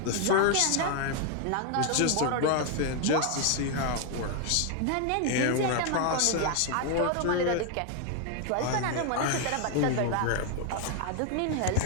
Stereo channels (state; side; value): different; both; correlation 0.00